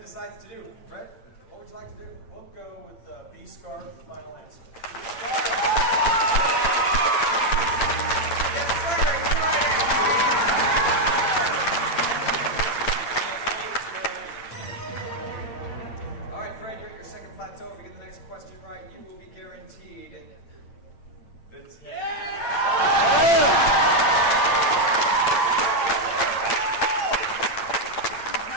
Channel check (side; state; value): right; late; 8.8 ms